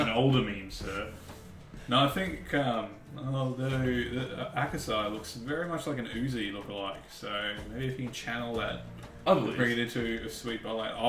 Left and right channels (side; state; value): both; identical; correlation 1.00